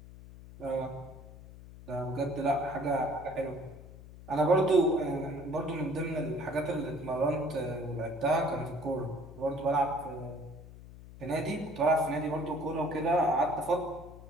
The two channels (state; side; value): noise; left; hum, 17 dB below the sound